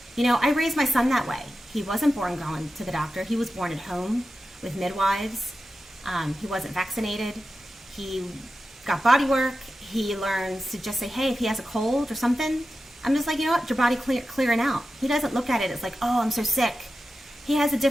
I raised my son that way. He wasn't born going to the doctor. He was born at home with midwives. He wasn't vaccinated. He got body work. He learns to just say, hey, if he has a cold or something, I'm just like, you know what, your body clearing out. He doesn't look at it as like, oh, I'm so sick. He has a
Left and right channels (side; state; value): both; normal; correlation 0.92